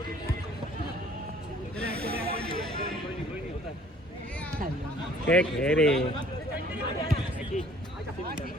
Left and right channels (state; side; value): normal; both; correlation 0.56